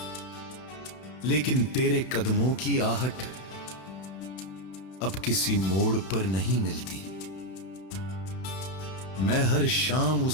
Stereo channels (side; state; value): right; late; 31 ms